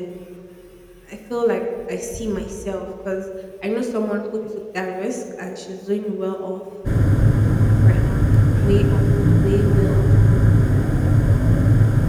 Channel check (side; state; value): both; identical; correlation 1.00